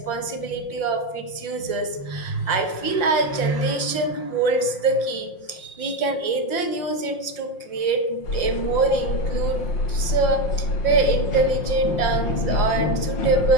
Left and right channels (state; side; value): late; right; 5.6 ms